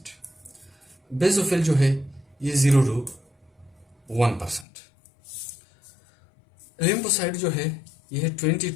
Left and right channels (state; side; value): drops out; right; at 4.7 s